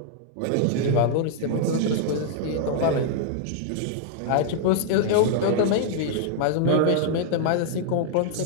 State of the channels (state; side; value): different; both; correlation -0.01